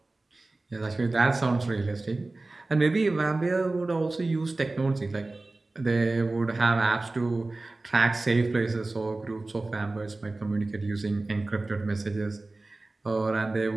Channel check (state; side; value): quieter; left; 3.1 dB